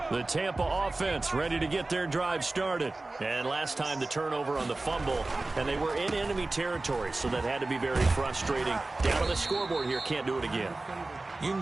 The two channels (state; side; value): quieter; left; 3.1 dB